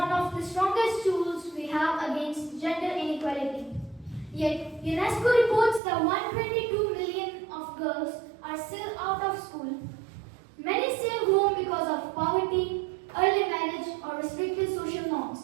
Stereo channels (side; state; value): left; drops out; at 5.8 s